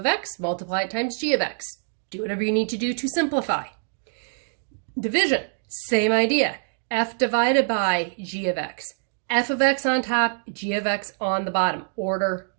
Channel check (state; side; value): silent; left; digital silence